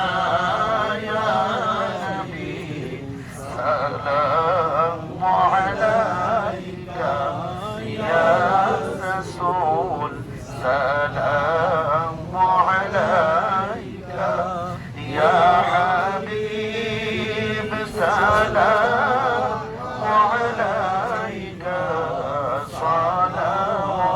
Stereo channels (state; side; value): identical; both; correlation 1.00